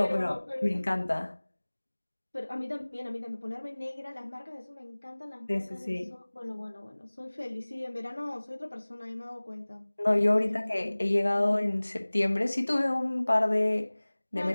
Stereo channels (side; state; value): both; inverted; correlation -1.00